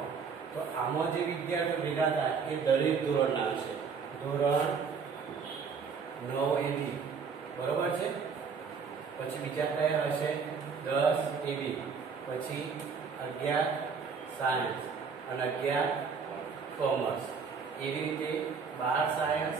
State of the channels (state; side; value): quieter; left; 5.7 dB